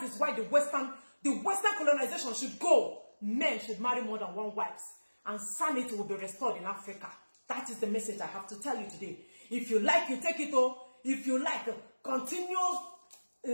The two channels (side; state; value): both; inverted; correlation -1.00